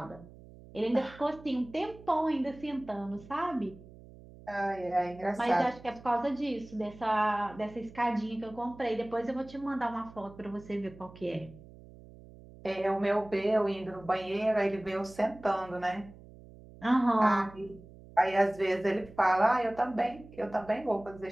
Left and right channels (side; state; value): right; noise; hum, 20 dB below the sound